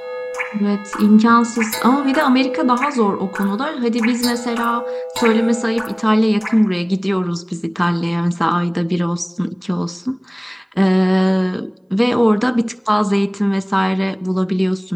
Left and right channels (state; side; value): identical; both; correlation 1.00